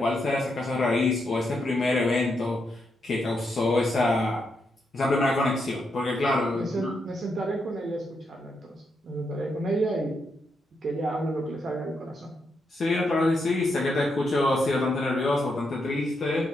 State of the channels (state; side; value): normal; both; correlation 0.81